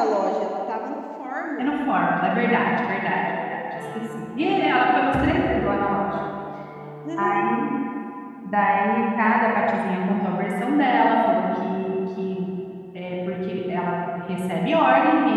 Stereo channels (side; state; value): both; identical; correlation 1.00